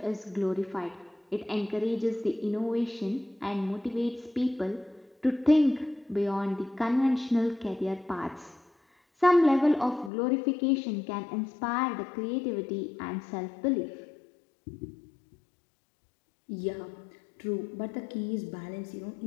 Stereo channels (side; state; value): right; drops out; at 10.1 s